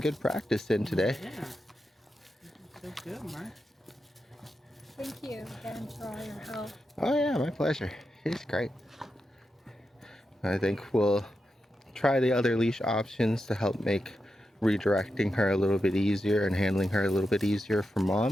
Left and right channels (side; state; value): both; normal; correlation 0.88